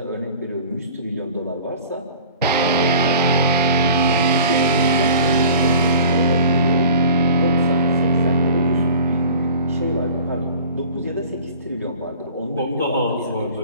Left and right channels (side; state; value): both; inverted; correlation -0.46